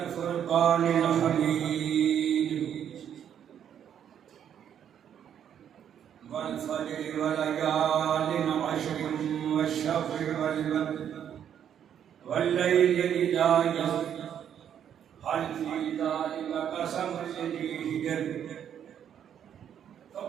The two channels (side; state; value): left; quieter; 9.2 dB